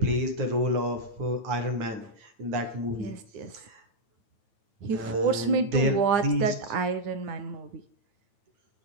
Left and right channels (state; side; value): late; left; 9.1 ms